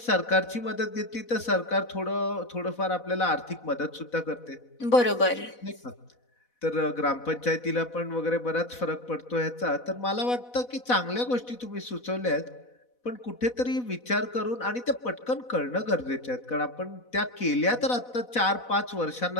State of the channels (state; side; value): late; right; 4.1 ms